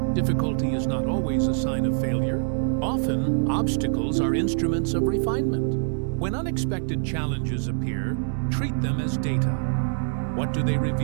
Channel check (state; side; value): silent; left; digital silence